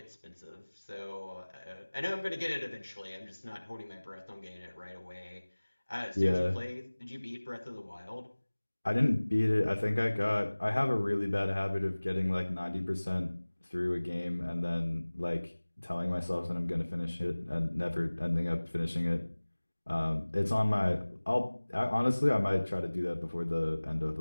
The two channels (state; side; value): inverted; both; correlation -1.00